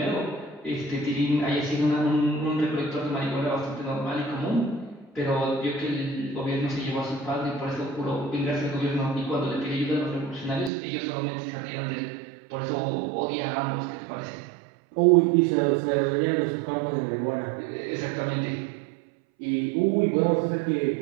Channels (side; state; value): left; drops out; at 10.7 s